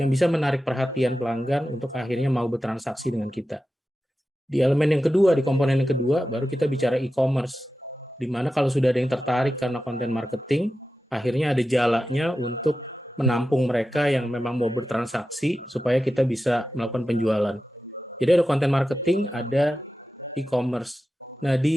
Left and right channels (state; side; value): normal; both; correlation 0.92